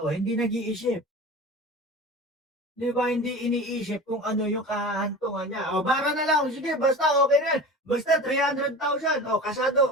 hindi nag-iisip. Di ba, hindi iniisip kung ano yung kahantungan niya. Bara na lang, sige, basta okay na. Basta 300,000,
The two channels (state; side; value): normal; both; correlation 0.34